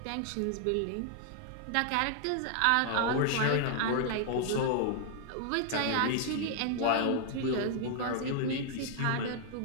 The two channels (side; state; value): both; different; correlation 0.00